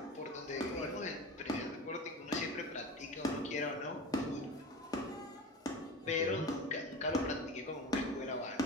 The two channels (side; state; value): both; normal; correlation 0.32